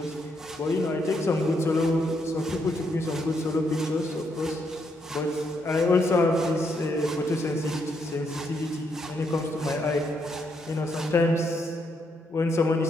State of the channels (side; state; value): both; normal; correlation 0.76